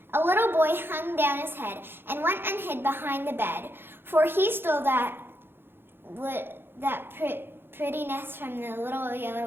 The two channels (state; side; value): late; left; 0.10 ms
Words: A little boy hung down his head and went and hid behind the bed, for he stole that pretty nest from the little